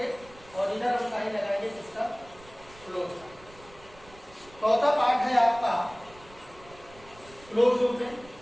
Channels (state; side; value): noise; right; rumble, 23 dB below the sound